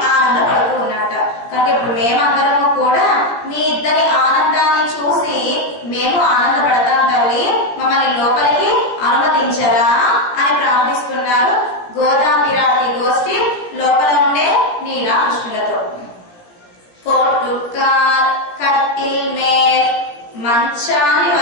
ఆనందపడుతూ ఉన్నట్ట. కనుక ఇప్పుడు మేమందరము కూడా మీ ఇద్దరి ఆనందాన్ని చూసి మేము ఆనందపడతాం తల్లి, మమ్మల్ని లోపలికి అనుమతించరా అని ప్రార్థిస్తున్నారు గోదా పిరాటి గోష్ఠి లోపల ఉండే నీలా కృష్ణులతో. కోటుకాల్ కట్టిల్ మేల్ మంచాన్ని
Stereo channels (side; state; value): right; late; 17 ms